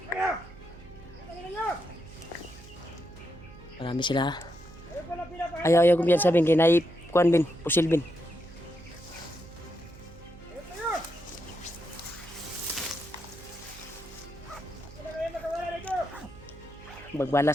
Marami sila. Ayaw ko biyan sabihin kay kuan bin, pusil bin.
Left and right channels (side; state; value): right; noise; hum, 19 dB below the sound